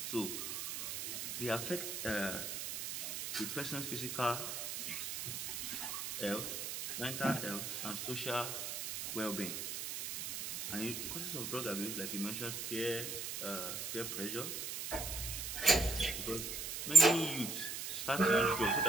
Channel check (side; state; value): right; noise; hiss, 5 dB below the sound